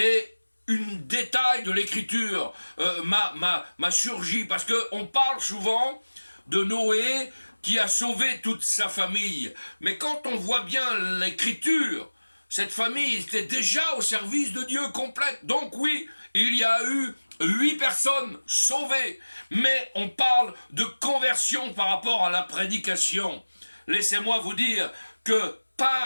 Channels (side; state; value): both; inverted; correlation -1.00